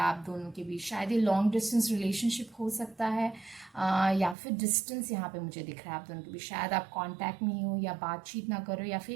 आप दोनों के बीच, शायद ये लॉन्ग डिस्टेंस रिलेशनशिप हो सकता है, या फिर डिस्टेंस यहाँ पे मुझे दिख रहा है आप दोनों के बीच। शायद आप कांटेक्ट में हो या बातचीत ना करो, या फिर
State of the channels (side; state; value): left; drops out; at 4.4 s